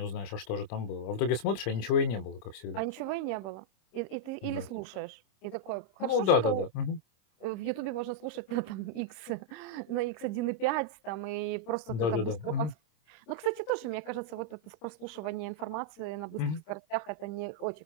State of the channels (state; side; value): late; right; 26 ms